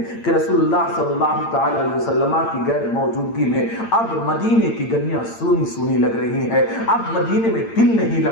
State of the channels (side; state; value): right; late; 8.8 ms